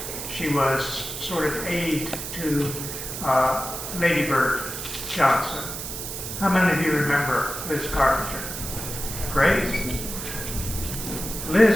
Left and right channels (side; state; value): right; noise; hiss, 7 dB below the sound